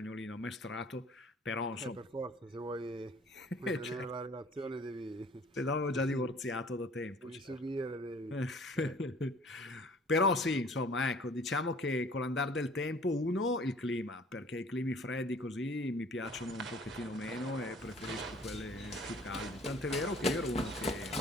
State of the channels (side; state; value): both; normal; correlation 0.52